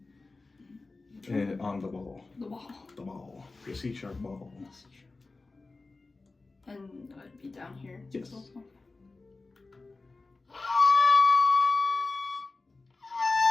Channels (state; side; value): quieter; right; 3.6 dB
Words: on the ball. The ball. The ball. Your C sharp ball. Yes, sure. And I'd be down here. Yes. Also.